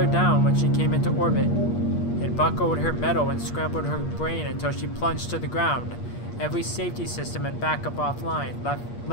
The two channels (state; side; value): late; right; 8.5 ms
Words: down when she came into orbit. It buckled her metal and scrambled her brain until she plunged to the ground. Every safety system and backup offline, left